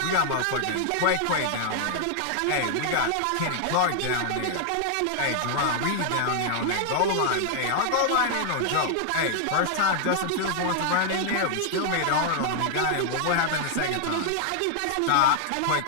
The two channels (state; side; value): different; both; correlation -0.01